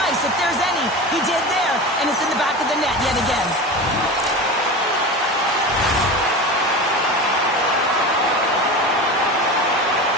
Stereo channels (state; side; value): normal; both; correlation 0.28